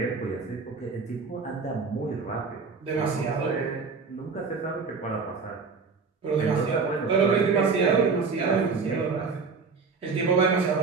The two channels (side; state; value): left; quieter; 4.8 dB